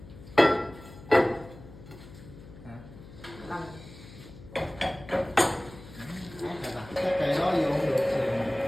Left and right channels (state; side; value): noise; left; hum, 18 dB below the sound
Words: Cái cây đó vô không được thì